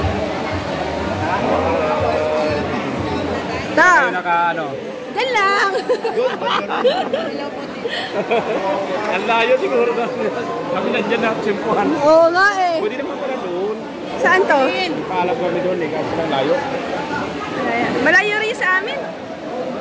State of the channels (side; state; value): both; identical; correlation 1.00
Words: Ta! Diyan lang! Ang layo siguro na. Kami nandiyan na simpuhan. Oo nga eh. Pwede naman pala doon. Saan to? Paalam kami doon eh, kasi lang layo. Malayo rin sa amin.